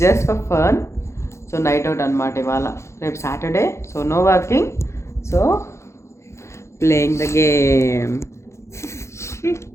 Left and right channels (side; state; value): right; late; 0.14 ms